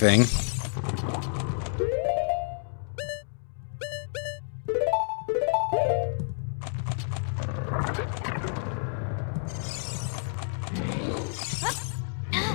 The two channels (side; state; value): right; silent; 58 dB below the other